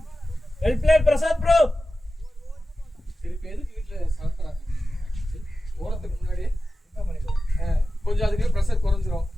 plate Prasad bro திருப்பி எதுக்கு வீட்டுல சாப்பிட்றாங்க ஓரத்துக்கு முன்னாடியே கொஞ்சம் அதுக்கு ப்ரெஷர் குறைஞ்சிரும்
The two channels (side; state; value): both; normal; correlation 0.94